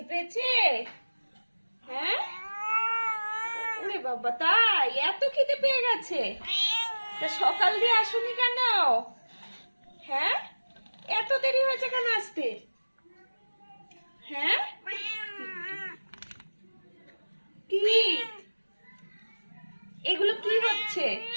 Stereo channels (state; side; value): inverted; both; correlation -1.00